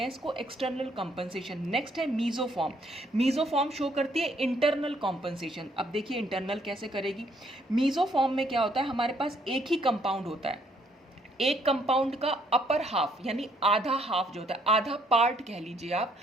हैं इसको एक्सटर्नल कॉम्पनसेशन। नेक्स्ट है मीजोफॉर्म। मीजोफॉर्म शो करती है इंटरनल कॉम्पनसेशन। अब देखिए इंटरनल कैसे करेगी। मीजोफॉर्म में क्या होता है, हमारे पास एक ही कंपाउंड होता है, एक कंपाउंड का अपर हाफ यानी आधा हाफ जो होता है, आधा पार्ट कह लीजिए आप,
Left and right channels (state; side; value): normal; both; correlation 0.68